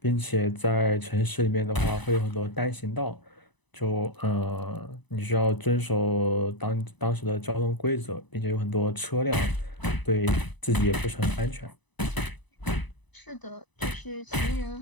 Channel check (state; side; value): late; right; 1.0 ms